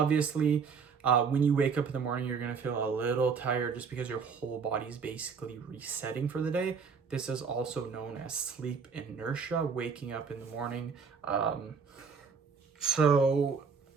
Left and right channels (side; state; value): left; quieter; 5.7 dB